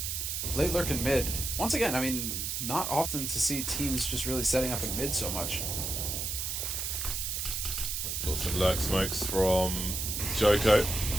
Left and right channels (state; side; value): noise; right; hiss, 2 dB below the sound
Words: late lurk in mid. Once again, I mean, not often to see teams just really setting up in mid so much. Got some lurk smokes from Joko.